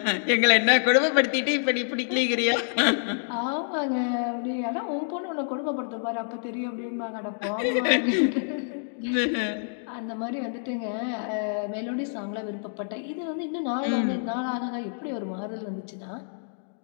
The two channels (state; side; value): silent; right; digital silence